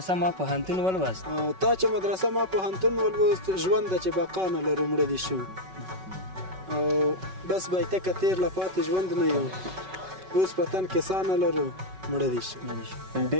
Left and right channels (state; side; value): late; left; 5.3 ms